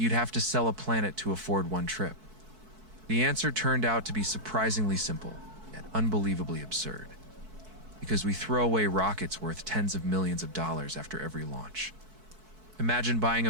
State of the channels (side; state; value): left; late; 4.6 ms